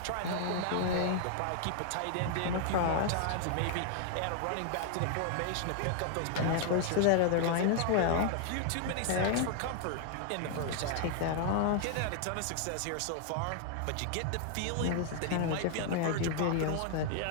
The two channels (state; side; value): different; both; correlation 0.00